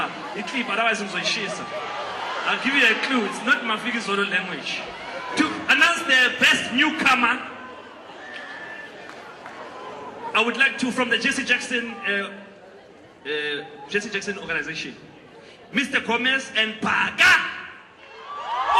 otherwise ngizoyishisa. I'll give you a clue. It's not Mafiki Zulu language. To announce the best newcomer, I would like to, from the Jesse Jackson organization, Mr. Gomez and Paga.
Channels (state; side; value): identical; both; correlation 1.00